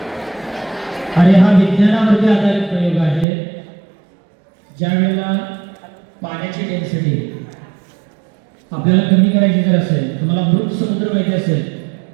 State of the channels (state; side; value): drops out; left; at 3.2 s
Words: आणि हा विज्ञानावरती आधारित प्रयोग आहे. ज्यावेळेला पाण्याची डेन्सिटी आपल्याला कमी करायची जर असेल, तुम्हाला मृत समुद्र माहिती असेल,